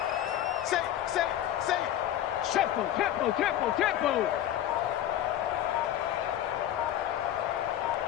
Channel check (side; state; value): right; quieter; 11.8 dB